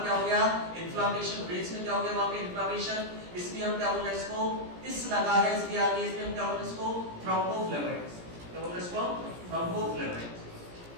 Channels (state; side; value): late; left; 17 ms